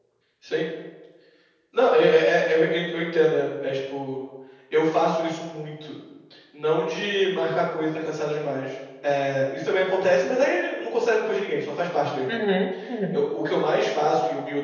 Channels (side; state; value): both; identical; correlation 1.00